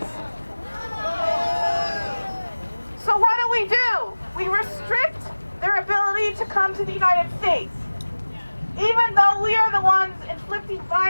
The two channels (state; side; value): inverted; both; correlation -1.00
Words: So what do? We restrict their ability to come to the United States, even though we are the ones inflicting